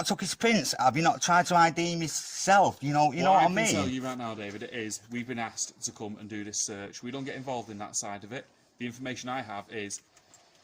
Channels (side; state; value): both; identical; correlation 1.00